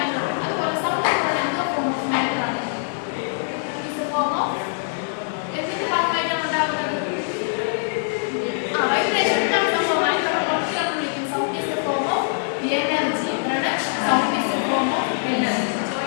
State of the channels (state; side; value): silent; right; 55 dB below the other